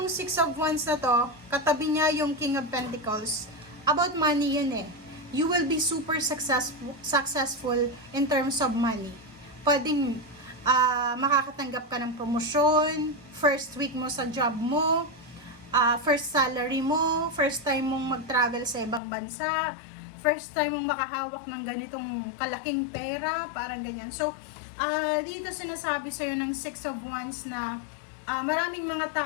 6 of Wands na to, katabi niya yung King of Pentacles. About money yun eh. You will be super successful in terms of money. Pwedeng makakatanggap ka ng promosyon, first week mo sa job mo, first salary mo, first time mong mag-travel sa ibang bansa, first time mong makahawak ng ganitong kalaking pera, parang ganyan. So, Dito sinasabi sa'yo ng Six of Wands na maraming mga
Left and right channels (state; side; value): drops out; right; at 19.0 s